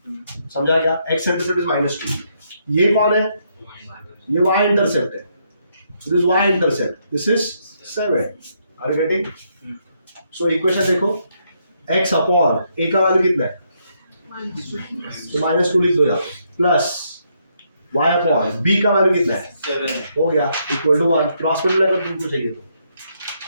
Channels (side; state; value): both; inverted; correlation -0.75